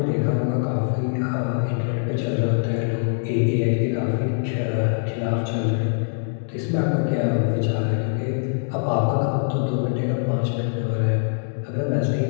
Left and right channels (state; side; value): silent; right; digital silence